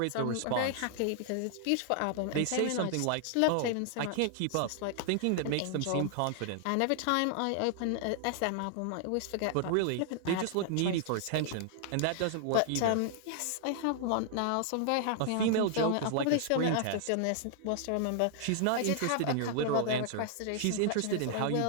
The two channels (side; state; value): both; different; correlation -0.01